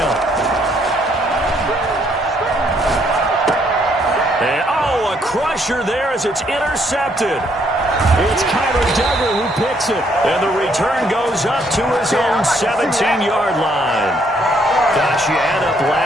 And, oh, a crusher there as it's intercepted. It's Kyler Duggar who picks it. And the return goes up to his own 17-yard line. Gosh, you add up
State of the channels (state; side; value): normal; both; correlation 0.69